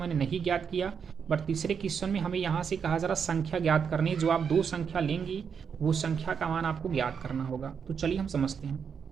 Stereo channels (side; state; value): left; quieter; 6.7 dB